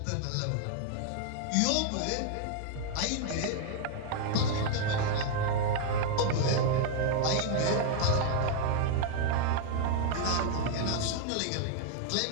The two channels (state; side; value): different; both; correlation 0.00